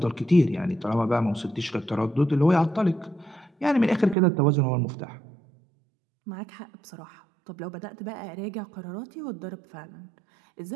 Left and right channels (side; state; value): left; drops out; at 4.2 s